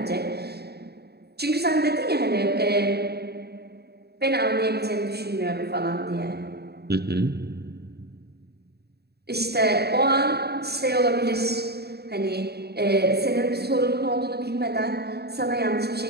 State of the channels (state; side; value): late; left; 0.47 ms